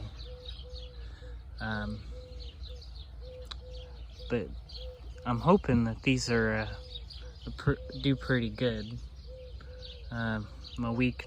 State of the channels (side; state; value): both; identical; correlation 1.00